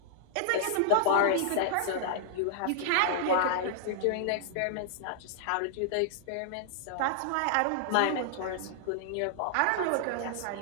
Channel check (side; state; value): both; different; correlation -0.01